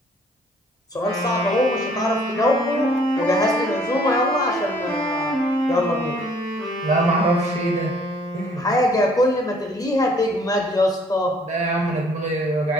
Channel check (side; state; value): both; normal; correlation 0.60